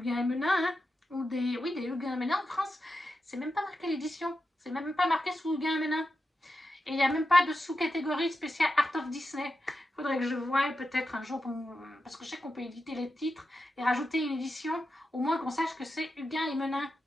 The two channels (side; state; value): both; normal; correlation 0.89